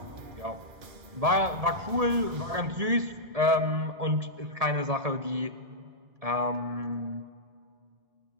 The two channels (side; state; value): left; late; 1.8 ms